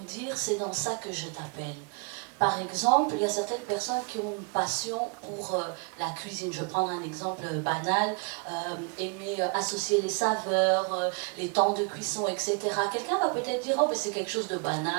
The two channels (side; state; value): left; quieter; 36.4 dB